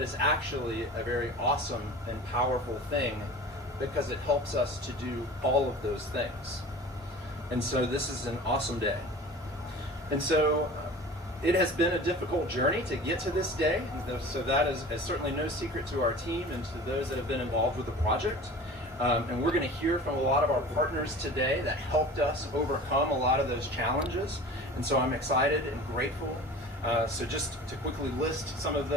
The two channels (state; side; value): normal; both; correlation 0.39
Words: is actually a very awesome and powerful thing because it helps us to do all of those things. And so this is an awesome day. And so it has been a difficult journey to get to this day. So that is certainly no secret to our team and to those that have been involved with the project. And we're going to hear from a lot of our partners today that helped us overcome a lot of those challenges. And so I'm excited and grateful. So just to quickly list some of